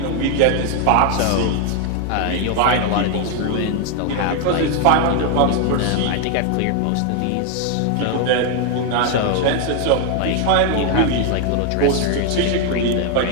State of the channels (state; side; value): different; both; correlation 0.01